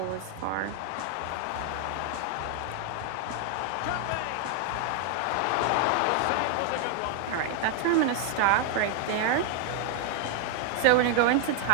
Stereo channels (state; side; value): different; both; correlation 0.00